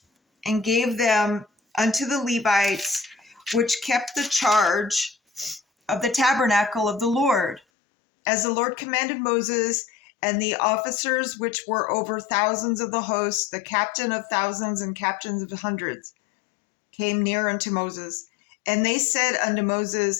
and gave them unto the Levites, which kept the charge of the tabernacle of the Lord, as the Lord commanded Moses. And the officers which were over thousands of the host, the captain of thousands and captains of hundreds, came near unto Moses. And they said unto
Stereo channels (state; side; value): drops out; right; at 7.6 s